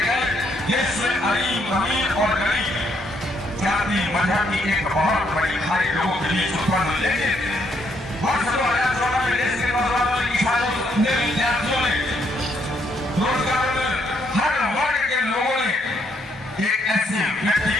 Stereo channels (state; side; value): normal; both; correlation 0.73